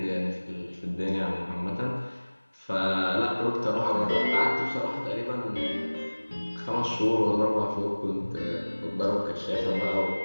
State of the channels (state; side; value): inverted; both; correlation -1.00